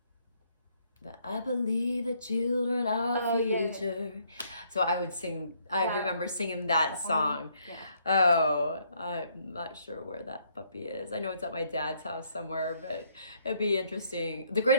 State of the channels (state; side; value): inverted; both; correlation -0.69